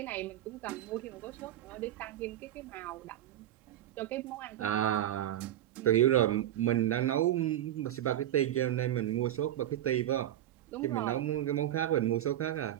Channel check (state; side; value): quieter; left; 12.3 dB